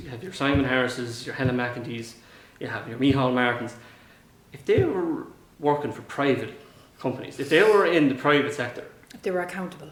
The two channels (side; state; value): both; identical; correlation 1.00